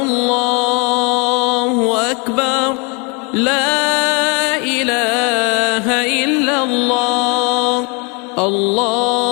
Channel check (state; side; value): quieter; right; 32.5 dB